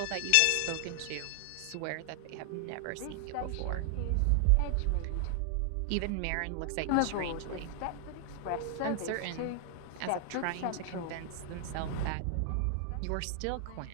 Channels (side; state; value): both; different; correlation 0.00